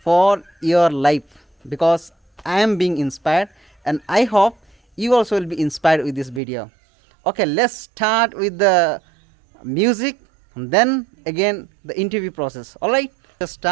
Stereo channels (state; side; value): drops out; left; at 6.4 s